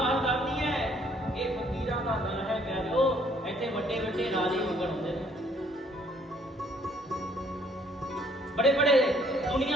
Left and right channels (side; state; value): both; normal; correlation 0.63